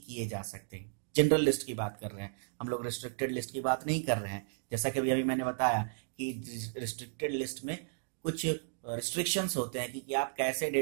किए जा सकते हैं। जनरल लिस्ट की बात कर रहे हैं हम लोग, रिस्ट्रिक्टेड लिस्ट की बात नहीं कर रहे हैं। जैसा कि अभी मैंने बताया कि रिस्ट्रिक्टेड लिस्ट में कुछ रिस्ट्रिक्शंस होते हैं कि आप कैसे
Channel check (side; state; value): left; silent; digital silence